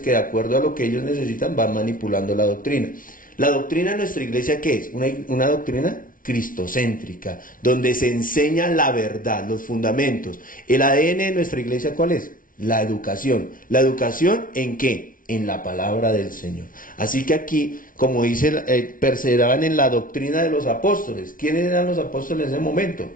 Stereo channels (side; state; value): right; late; 0.39 ms